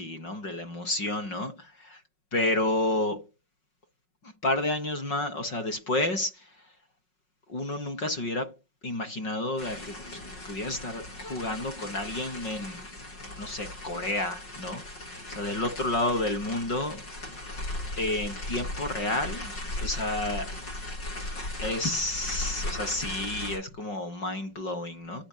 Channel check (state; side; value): late; right; 5.4 ms